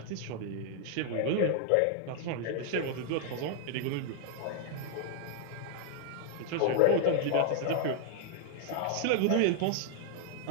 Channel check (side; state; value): both; different; correlation 0.00